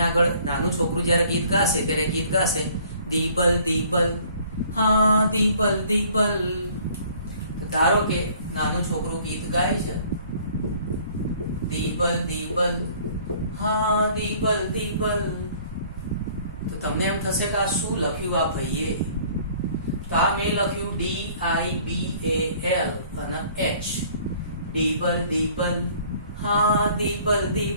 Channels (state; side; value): inverted; both; correlation -0.56